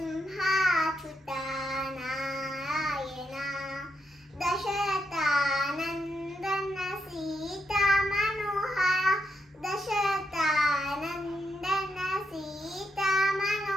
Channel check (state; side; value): normal; both; correlation 0.81